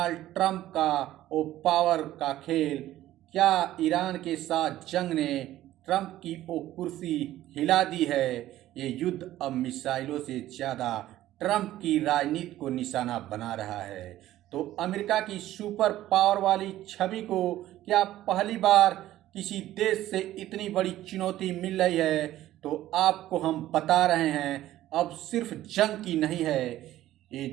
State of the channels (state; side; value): quieter; left; 14.2 dB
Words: ट्रंप का वो पावर का खेल, क्या ईरान के साथ जंग ने ट्रंप की वो कुर्सी हिला दी है? ये युद्ध अब मिसाइलों से ज़्यादा ट्रंप की राजनीति को निशाना बना रहा है। तो अमेरिका की सुपर पावर वाली छवि को क्या पहली बार किसी देश से इतनी बड़ी चुनौती मिल रही है? तो आपको हम बता रहे हैं, अब सिर्फ जंग की नहीं है, ये